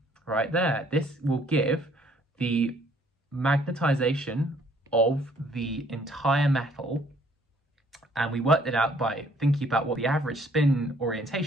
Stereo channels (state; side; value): normal; both; correlation 0.62